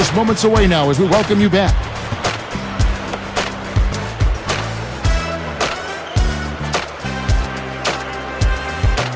moments away now as we welcome you back.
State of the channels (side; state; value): both; identical; correlation 1.00